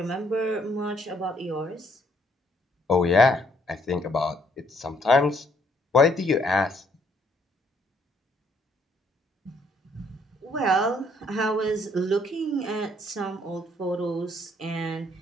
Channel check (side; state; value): both; normal; correlation 0.68